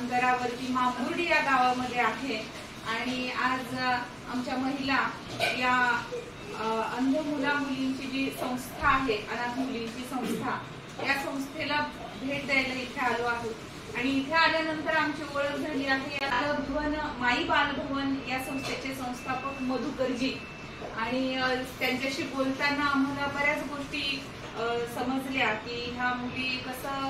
मांबुर्डी या गावामध्ये आहे आणि आज आमच्या महिला या अंध मुला मुलींची जी संस्था आहे, अनाथ मुलींची संस्था, या संस्थेला भेट द्यायला इथे आलो आहोत आणि इथे आल्यानंतर आमची ओळख झाली आहे। बालभवन माई बालभवन या संस्थेचे संस्थापक मधुकरजी आणि त्यांच्याशी बोलताना आम्हाला बऱ्याच गोष्टी समजल्या की ह्या मुली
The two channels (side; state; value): both; identical; correlation 1.00